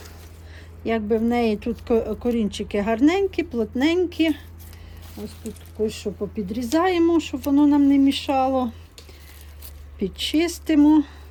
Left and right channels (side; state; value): both; identical; correlation 1.00